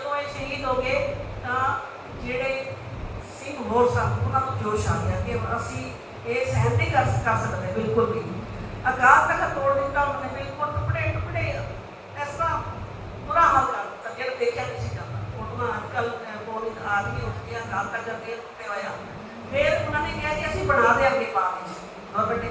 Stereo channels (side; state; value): both; identical; correlation 1.00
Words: ਇਹ ਸ਼ਹੀਦ ਹੋ ਗਏ ਤਾਂ ਜਿਹੜੇ ਸਿੰਘ ਹੋਰ ਸਨ ਉਹਨਾਂ ਨੂੰ ਜੋਸ਼ ਆ ਗਿਆ ਕਿ ਅਸੀਂ ਇਹ ਸਹਿਣ ਨਹੀਂ ਕਰ ਸਕਦੇ ਬਿਲਕੁਲ ਵੀ। ਅਕਾਲ ਤਖਤ ਤੋੜ ਦਿੱਤਾ ਉਹਨਾਂ ਨੇ, ਬਿਲਕੁਲ ਟੁਕੜੇ ਟੁਕੜੇ ਇਸ ਤਰ੍ਹਾਂ ਬੁਰਾ ਹਾਲ ਕਰ ਦਿੱਤਾ ਜਿਹੜਾ ਦੇਖਿਆ ਨਹੀਂ ਸੀ ਜਾਂਦਾ। ਉਹਨਾਂ ਅੱਜ ਕੱਲ੍ਹ ਪੌੜੀ ਆ ਗਈ ਉੱਠ ਗਿਆ, ਅਕਾਲ ਤਖਤ ਦੇ ਟੁੱਟੇ ਹੋਇਆ। ਫਿਰ ਉਹਨਾਂ ਨੇ ਕਿਹਾ ਕਿ ਅਸੀਂ ਬਣਾ ਦਿਆਂਗੇ ਪਾਣੀ, ਗਵਰਨਮੈਂਟ ਨੇ